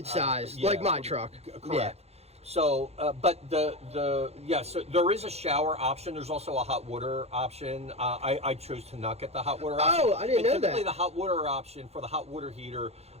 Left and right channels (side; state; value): left; late; 0.31 ms